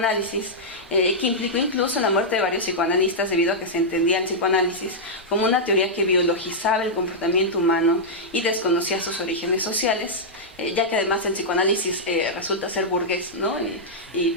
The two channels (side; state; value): both; normal; correlation -0.08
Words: que implicó incluso la muerte de varios psicoanalistas debido a que se entendía el psicoanálisis como una teoría que biologizaba el comportamiento humano y desconocía sus orígenes sociales, ya que además el psicoanálisis resulta ser burgués, ¿no? Y